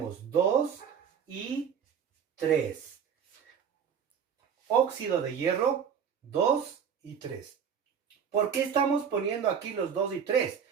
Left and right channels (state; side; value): quieter; left; 7.5 dB